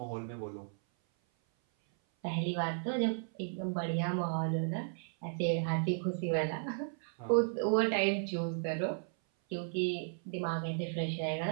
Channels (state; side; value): silent; left; 55 dB below the other